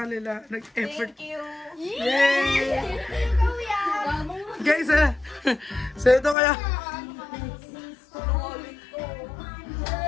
kanila? Nag-effort. Thank you. Yay! Kuya. Guys, so ito kaya.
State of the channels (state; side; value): drops out; right; at 6.4 s